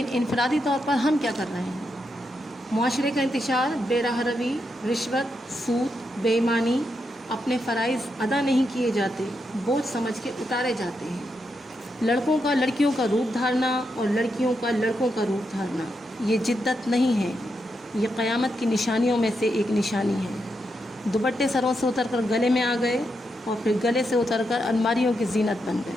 انفرادی طور پر ہم کیا کر رہے ہیں؟ معاشرے کا انتشار، بے راہ روی، رشوت، سود، بے ایمانی، اپنے فرائض ادا نہیں کیے جاتے، بوجھ سمجھ کے اتارے جاتے ہیں. لڑکوں کا لڑکیوں کا روپ دھارنا اور لڑکیوں کا لڑکوں کا روپ دھارنا یہ جدت نہیں ہے، یہ قیامت کی نشانیوں میں سے ایک نشانی ہے. دوپٹے سروں سے اتر کر گلے میں آ گئے اور پھر گلے سے اتر کر الماریوں کی زینت بن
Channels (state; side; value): normal; both; correlation 0.83